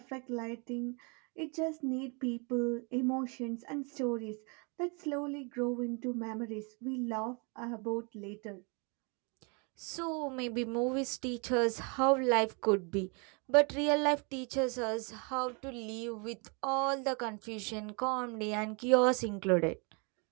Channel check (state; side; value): quieter; left; 33.4 dB